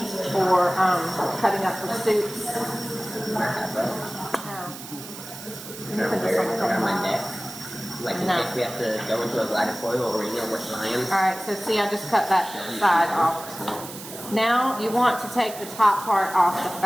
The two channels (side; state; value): right; noise; hiss, 13 dB below the sound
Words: or cutting up for soups. Around my neck. Like in case we have to go into a bladder foil or we're flying. Alright, so see, I just cut that side off. Now you want to take the top part off the